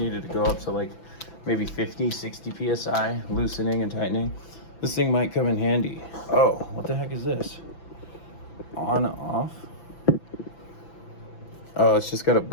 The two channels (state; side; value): late; right; 6.0 ms